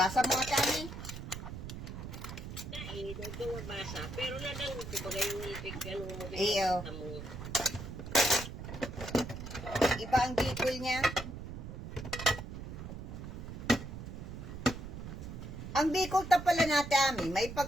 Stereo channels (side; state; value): right; noise; rumble, 9 dB below the sound